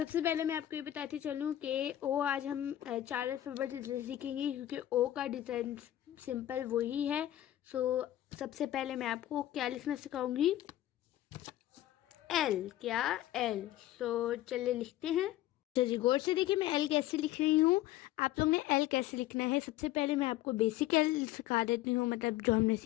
पहले मैं आपको ये बताती चलूँ कि ओ आज हम 4 अल्फ़ाबेट सीखेंगे क्योंकि ओ का डिज़ाइन सिंपल वही है। सबसे पहले मैं आपको क्या लिखना सिखाऊंगी, एल। क्या? एल। चलिए लिखते हैं। अच्छा जी, गौर से देखिए मैं एल कैसे लिख रही हूँ। आप लोग ने एल कैसे लिखना है, सबसे पहले मैं आपको बेसिक एल सिखा देती हूँ, मतलब जो हमने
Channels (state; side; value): quieter; right; 13.9 dB